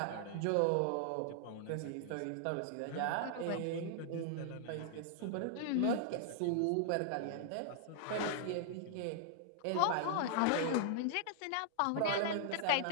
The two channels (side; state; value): both; different; correlation -0.01